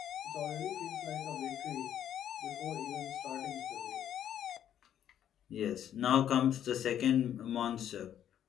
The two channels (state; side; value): quieter; right; 10.2 dB